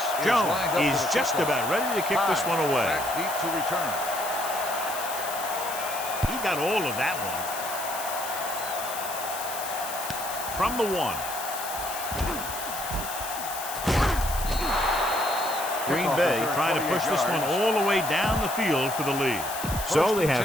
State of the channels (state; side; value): noise; left; hiss, 8 dB below the sound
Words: Jones is just about ready to kick this one away. Back deep to return. He got all of that one. From the 1. Green Bay trying to push this one all the way down the field for the lead. So they